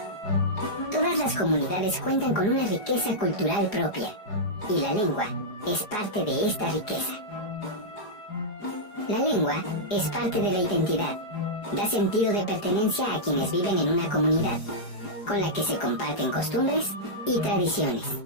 Todas las comunidades cuentan con una riqueza cultural propia, y la lengua es parte de esta riqueza. La lengua es parte de la identidad, da sentido de pertenencia a quienes viven en una comunidad, con la que se comparten costumbres y tradiciones.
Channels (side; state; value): right; late; 4.8 ms